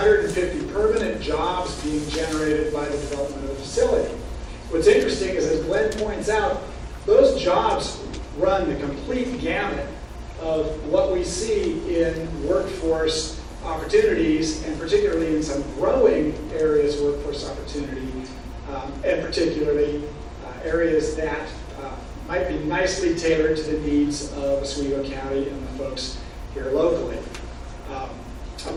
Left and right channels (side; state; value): both; identical; correlation 1.00